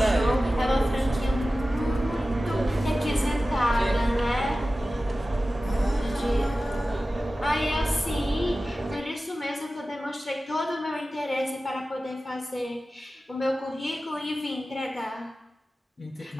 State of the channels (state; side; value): normal; both; correlation 0.95